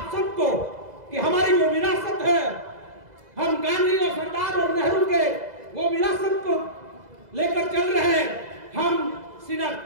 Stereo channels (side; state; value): left; late; 2.0 ms